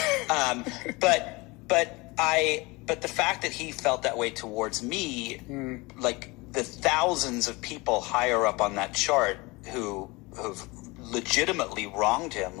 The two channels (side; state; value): right; quieter; 24.3 dB